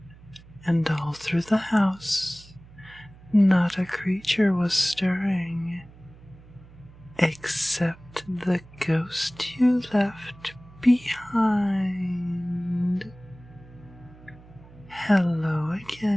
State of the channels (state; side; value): noise; right; hum, 22 dB below the sound